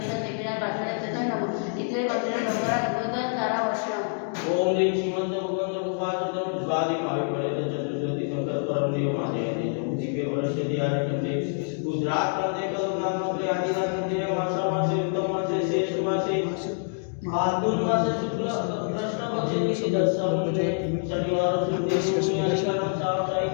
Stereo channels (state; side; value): silent; right; digital silence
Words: देवीनाथ पाठवण्यात नमः इथे मंदिर नवरा गणपती तारा वर्षम। ओम ह्रीं श्रीमंत भगवंत उपासतं स्वादि भावी पड़े चतुर्दशी संकल्प परम देव महादेव दिव्य वर्ष दियारकते गुजरात मध्ये कलमनाथ मध्ये आदिनाथ मध्ये मासा मासे उत्तम मासे शेष मासे फाल्गुन मासे शुक्ल कृष्ण पक्षे दशम शनिवार शुक्ल शनिवार